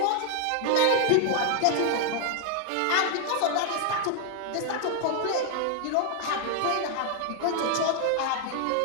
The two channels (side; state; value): both; different; correlation 0.00